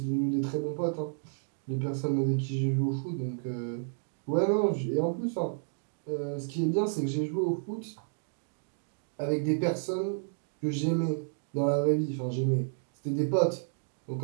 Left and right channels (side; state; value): left; silent; digital silence